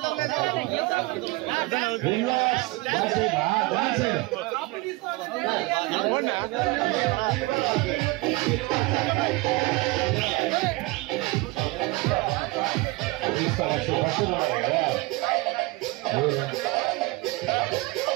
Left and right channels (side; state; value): left; quieter; 22.7 dB